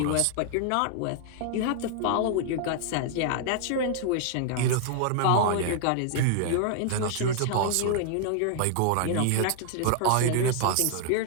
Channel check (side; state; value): both; different; correlation -0.01